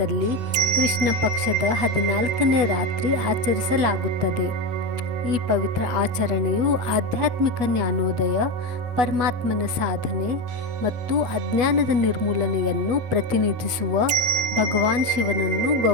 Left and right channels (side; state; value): left; late; 8.2 ms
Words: ಕೃಷ್ಣ ಪಕ್ಷದ 14ನೇ ರಾತ್ರಿ ಆಚರಿಸಲಾಗುತ್ತದೆ. ಈ ಪವಿತ್ರ ಆಚರಣೆಯು ಆಧ್ಯಾತ್ಮಿಕ ಜ್ಞಾನೋದಯ, ಪರಮಾತ್ಮನ ಸಾಧನೆ ಮತ್ತು ಅಜ್ಞಾನದ ನಿರ್ಮೂಲನೆಯನ್ನು ಪ್ರತಿನಿಧಿಸುವ ಭಗವಾನ್ ಶಿವನನ್ನು